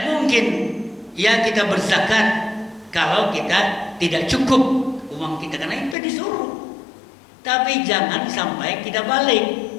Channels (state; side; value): drops out; right; at 6.0 s